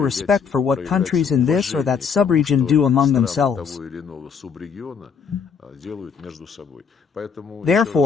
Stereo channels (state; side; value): quieter; right; 6.3 dB